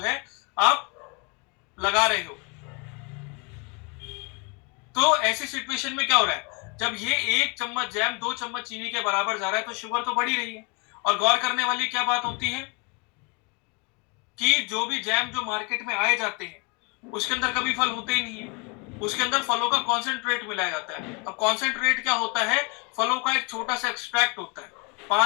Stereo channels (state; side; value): quieter; right; 32.2 dB